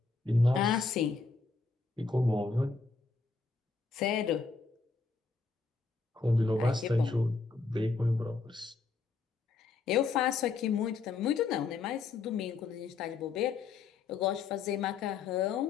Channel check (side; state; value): right; quieter; 4.3 dB